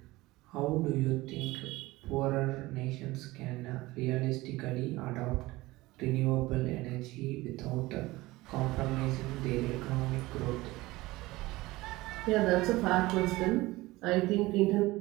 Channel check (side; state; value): left; quieter; 19.7 dB